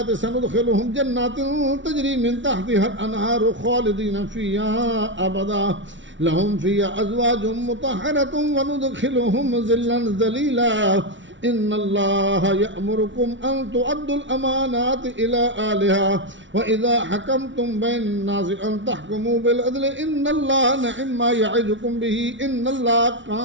سندخلهم جنات تجري من تحتها الأنهار خالدين فيها أبدا لهم فيها أزواج مطهرة وندخلهم ظلا ذليلا إن الله يأمركم أن تؤدوا الأمانات إلى أهلها وإذا حكمتم بين الناس أن تحكموا بالعدل إن الله نعم ما يعظكم به إن الله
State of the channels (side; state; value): left; late; 0.55 ms